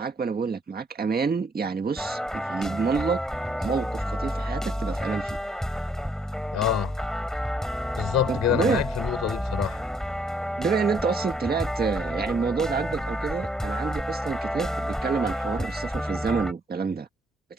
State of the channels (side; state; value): both; normal; correlation 0.68